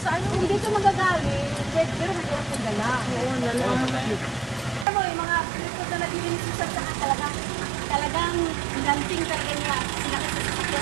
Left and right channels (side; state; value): left; drops out; at 4.9 s